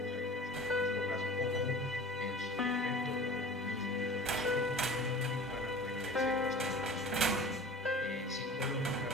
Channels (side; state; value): both; normal; correlation 0.40